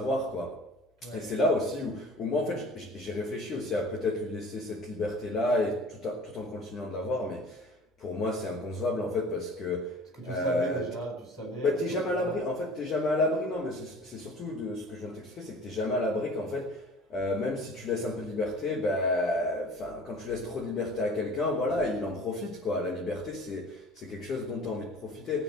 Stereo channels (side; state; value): both; normal; correlation 0.45